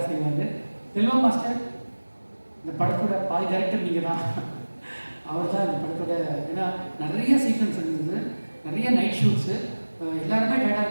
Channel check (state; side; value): inverted; both; correlation -1.00